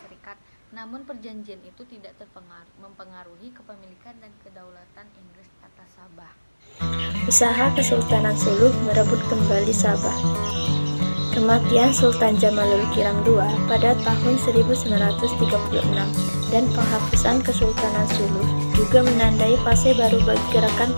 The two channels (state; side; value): inverted; both; correlation -1.00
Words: Serikat. Namun perjanjian itu tidak mempengaruhi kepemilikan dan kedaulatan Inggris atas Sabah. Usaha Kesultanan Sulu merebut kembali Sabah. Kematian Sultan Jamalul Kiram II pada tahun 1936 dan penghapusan Kesultanan Sulu juga menandai fase baru bagi gerakan